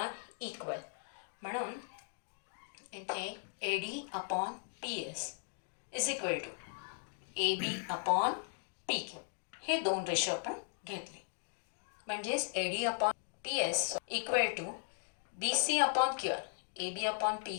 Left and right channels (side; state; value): right; silent; digital silence